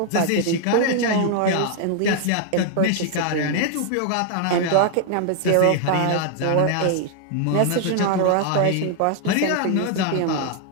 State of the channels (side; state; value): both; different; correlation 0.00